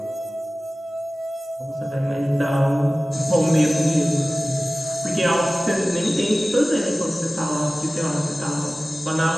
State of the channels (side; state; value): both; normal; correlation 0.97